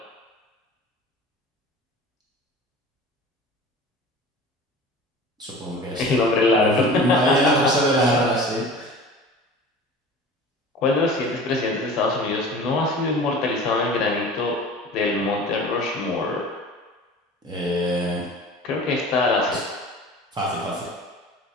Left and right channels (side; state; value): both; normal; correlation 0.39